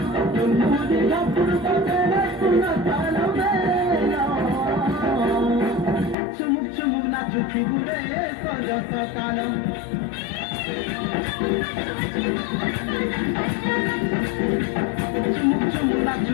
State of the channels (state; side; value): drops out; right; at 6.2 s